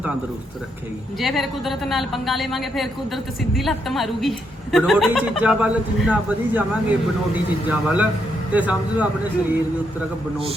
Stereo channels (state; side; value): normal; both; correlation 0.78